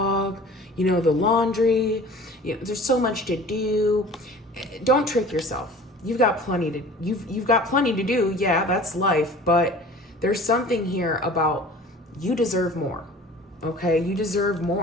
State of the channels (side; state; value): both; normal; correlation 0.44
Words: the laundry. There's so much to do. Don't trick yourself. You've got plenty to do. Yeah, that's life. But there's something here about you deserve more. Okay, you deserve